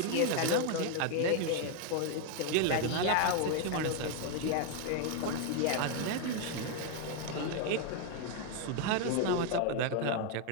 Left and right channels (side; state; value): both; different; correlation 0.01